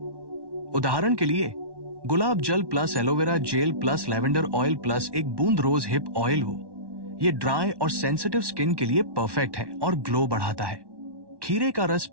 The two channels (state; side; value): late; left; 1.1 ms